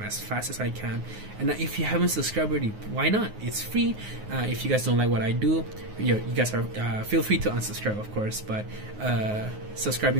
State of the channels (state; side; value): late; left; 9.5 ms